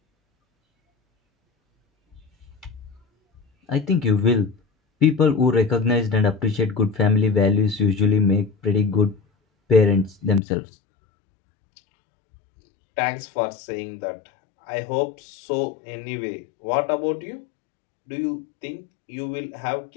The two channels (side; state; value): right; drops out; at 10.4 s